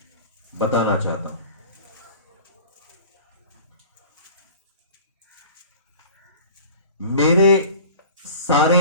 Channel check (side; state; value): both; inverted; correlation -0.41